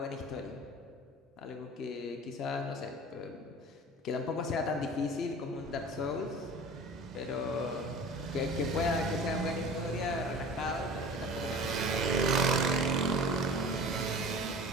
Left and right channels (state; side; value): normal; both; correlation 0.40